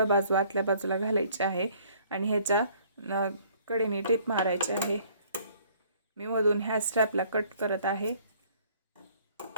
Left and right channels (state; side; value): inverted; both; correlation -0.59